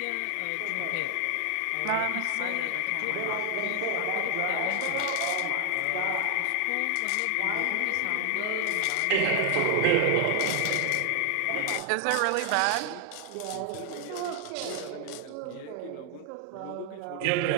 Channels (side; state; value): both; different; correlation 0.00